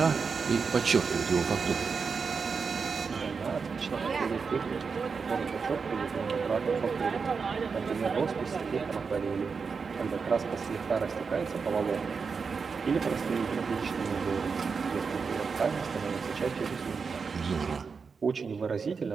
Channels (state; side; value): quieter; left; 5.3 dB